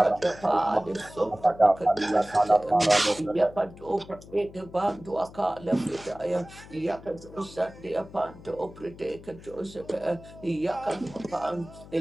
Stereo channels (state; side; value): noise; left; hum, 18 dB below the sound